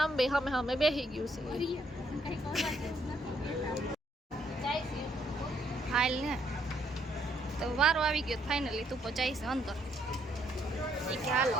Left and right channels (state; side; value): normal; both; correlation 0.71